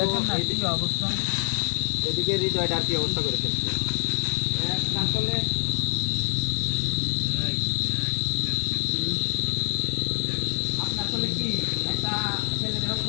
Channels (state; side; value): silent; right; digital silence